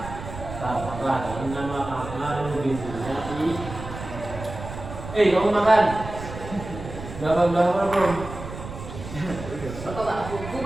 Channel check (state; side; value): noise; right; rumble, 10 dB below the sound